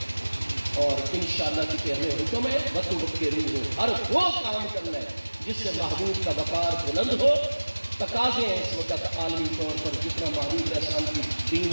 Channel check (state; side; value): inverted; both; correlation -1.00